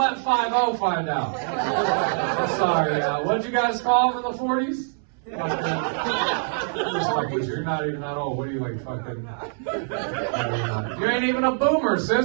find out. I'm sorry. What'd you guys call them in the 40s? You're not even that old. What are you like fucking? You ain't even a boomer,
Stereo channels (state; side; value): silent; left; 62 dB below the other